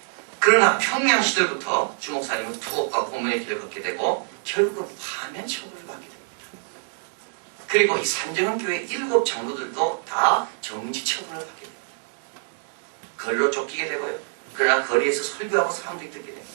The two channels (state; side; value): silent; left; 62 dB below the other